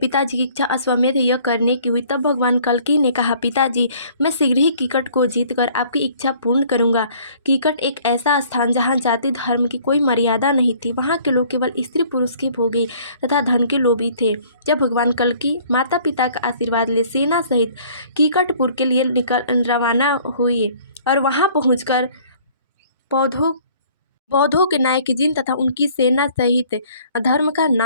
की इच्छा अश्वमेध यज्ञ करने की हुई। तब भगवान कल्कि ने कहा, पिताजी, मैं शीघ्र ही कीकट को जीतकर आपकी इच्छा पूर्ण करूंगा। कीकट एक ऐसा स्थान जहाँ जाति धर्म की कोई मर्यादा नहीं थी। वहाँ के लोग केवल स्त्री पुरुष के भोगी तथा धन के लोभी थे। जब भगवान कल्कि माता पिता का आशीर्वाद ले सेना सहित कीकटपुर के लिए रवाना हुए और वहाँ पहुँचकर बौद्धों के नायक जिन तथा उनकी सेना सहित धर्म का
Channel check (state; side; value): inverted; both; correlation -0.56